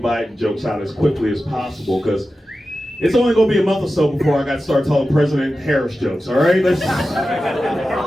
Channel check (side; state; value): both; normal; correlation 0.93